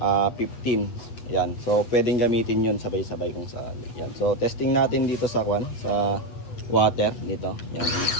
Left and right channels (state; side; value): late; right; 8.4 ms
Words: Yan. So, pwedeng gamitin yun sabay-sabay kung saan. Yan. So, testing natin dito sa sa water dito. Yan.